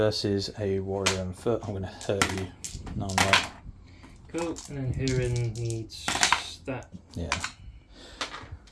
a warrior on foot. I'm gonna hurt you. No, I'm right. Cool. And then Hurin needs that. Yeah.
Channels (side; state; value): both; identical; correlation 1.00